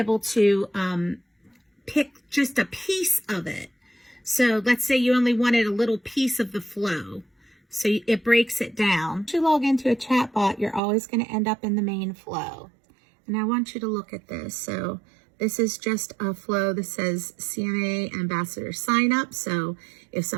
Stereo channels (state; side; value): drops out; left; at 10.8 s